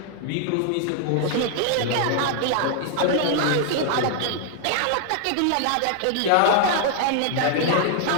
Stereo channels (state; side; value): different; both; correlation 0.00